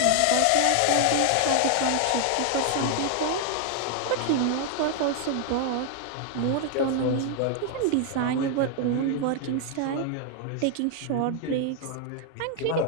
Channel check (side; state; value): both; different; correlation 0.00